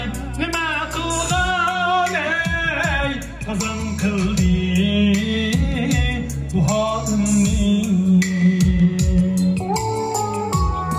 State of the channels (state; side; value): identical; both; correlation 1.00